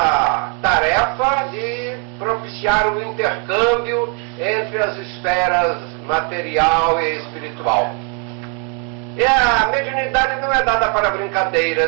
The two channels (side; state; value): left; quieter; 38.0 dB